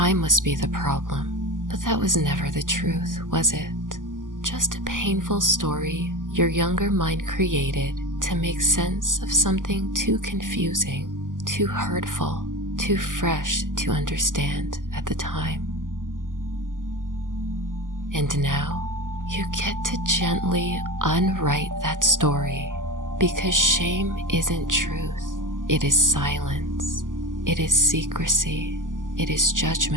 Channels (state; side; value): late; left; 0.88 ms